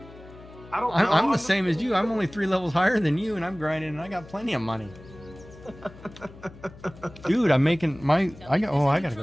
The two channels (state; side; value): noise; left; hum, 19 dB below the sound